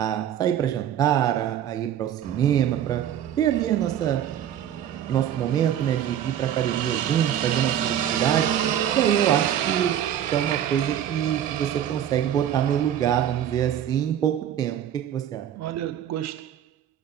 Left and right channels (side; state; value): left; quieter; 10.3 dB